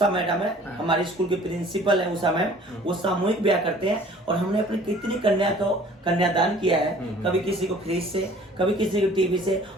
मैडम है, हमारे स्कूल के प्रिंसिपल है उषा मैम, वो सामूहिक ब्याह करते हैं। और हमने अपने कितनी कन्या को कन्यादान किया है, कभी किसी को फ्रिज से, कभी किसी को टीवी से।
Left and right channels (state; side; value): normal; both; correlation 0.51